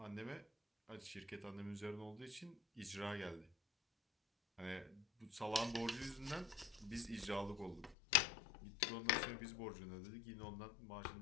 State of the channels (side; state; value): right; drops out; at 8.0 s